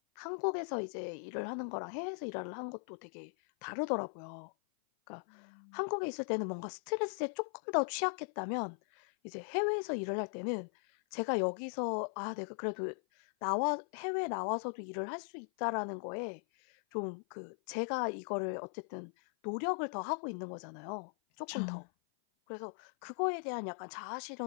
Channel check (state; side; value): silent; right; 52 dB below the other